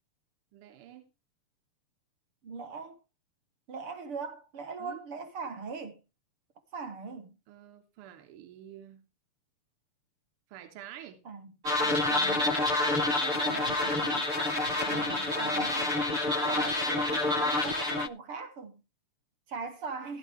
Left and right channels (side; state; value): left; late; 6.9 ms